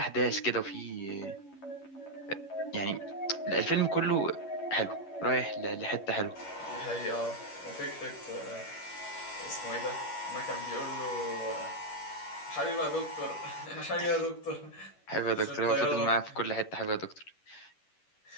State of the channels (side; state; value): right; late; 11 ms